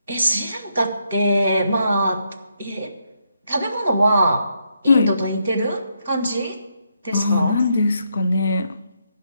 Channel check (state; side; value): inverted; both; correlation -0.78